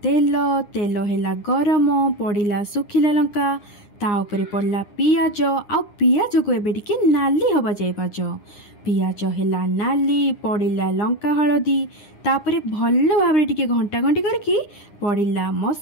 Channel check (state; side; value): late; right; 9.8 ms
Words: तेल, तेल हैला गरम, पड़िला सुखिला लंका, ता उपरे पड़ला पियाज। आउ पियाज को एबे टिके नाली हवा जाय पाज। पियाज हैला नाली, पड़िला लंका हळदी, तापरे भल्ल भाबरे टिके घंटा घंटी करके पड़िला